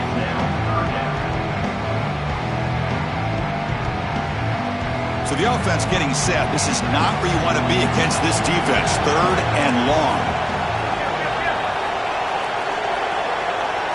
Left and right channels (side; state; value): both; identical; correlation 1.00